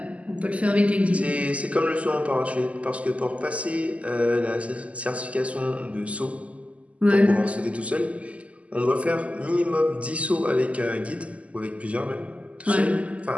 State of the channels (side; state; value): left; late; 0.065 ms